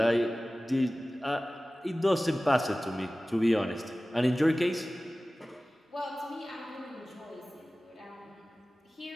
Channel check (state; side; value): normal; both; correlation 0.97